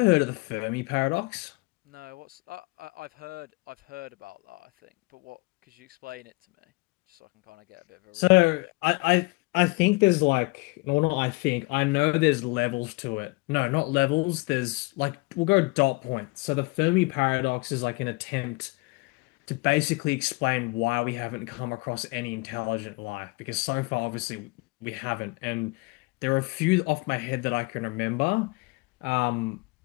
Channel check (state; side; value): quieter; right; 26.0 dB